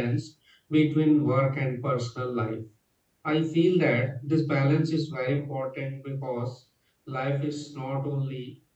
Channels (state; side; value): identical; both; correlation 1.00